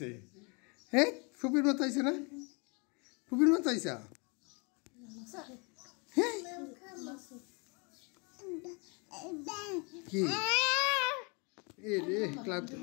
হ্যাঁ ফুপির মতো আইছে না ফুপির মতো আইসা কি এ রে ক্লান্ত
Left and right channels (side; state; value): right; quieter; 32.6 dB